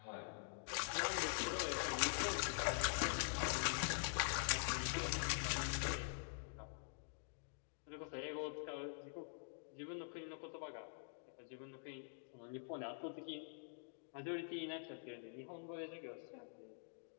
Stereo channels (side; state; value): right; silent; digital silence